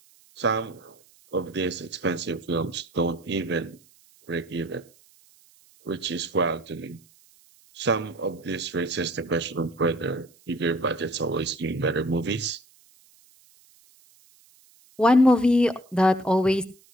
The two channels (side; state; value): right; noise; hiss, 29 dB below the sound